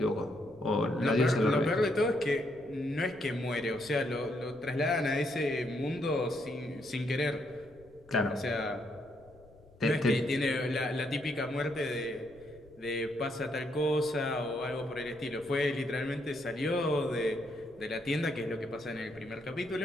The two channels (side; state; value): left; noise; rumble, 25 dB below the sound